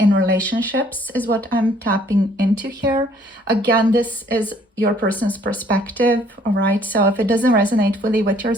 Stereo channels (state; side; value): normal; both; correlation 0.61